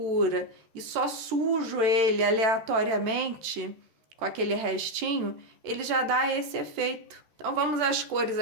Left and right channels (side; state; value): left; late; 13 ms